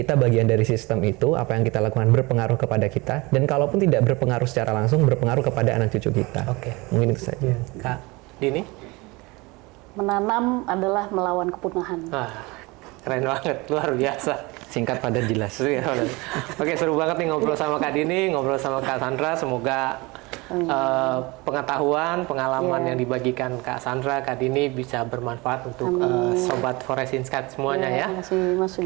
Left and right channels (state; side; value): quieter; left; 24.2 dB